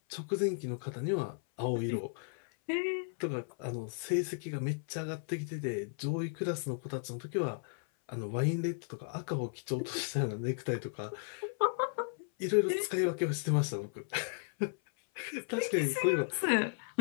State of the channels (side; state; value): right; silent; 55 dB below the other